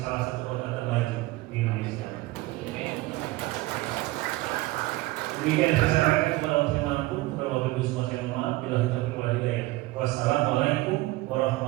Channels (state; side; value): quieter; left; 19.7 dB